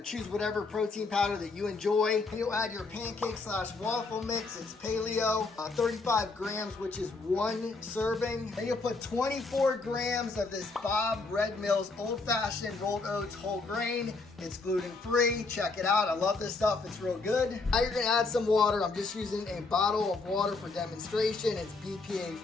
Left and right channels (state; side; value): quieter; right; 3.8 dB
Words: choose whatever protein powder that you enjoy. And you'll add your pancake/waffle mix. It's paleo, 35 grams, which is 1 serving. Then you'll put 24 grams of this Bob Red Mill's old-fashioned rolled oats whole grain. It's gluten-free. Check it out. I love this stuff. It's real good. Now you're gonna add some water. I'm just using a bottle of water for demonstration. It's